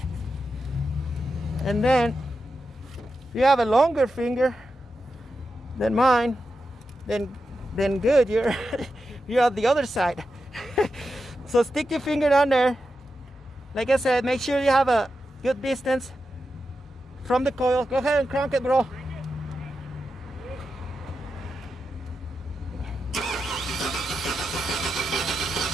And then if you have a longer finger than mine, then good, you're you're on the other side. So stick your finger down there. Like I said, make sure you have a good distance from the coil. Go ahead and crank it, bro.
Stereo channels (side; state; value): both; normal; correlation 0.89